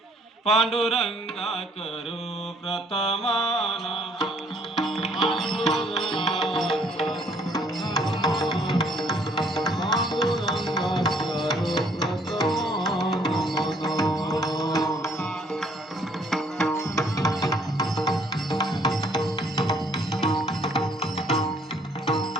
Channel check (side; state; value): both; normal; correlation 0.63